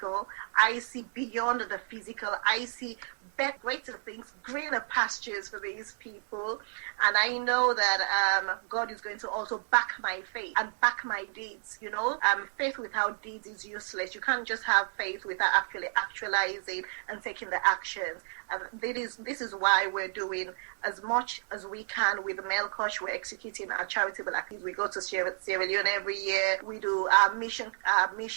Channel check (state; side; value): silent; left; digital silence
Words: I see beyond the physical. I see greater things, greener pastures for these people. And I know that God is going to also back my faith and back my deeds. Faith without deeds is useless. You can't just have faith without actually actualizing and taking the actions. And this is why we're doing as much as we can with the Melkosh. We're executing our charitable activities. We go to Sierra Leone every year. We do our missions